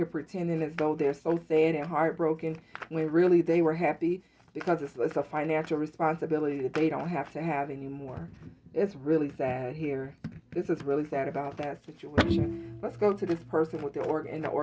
pretending as though they're so sad and heartbroken when really they were happy, because it's a financial responsibility that they don't have to have anymore. It's really sad here. This is really sad about that situation. Let's go to this person with in the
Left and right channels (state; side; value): identical; both; correlation 1.00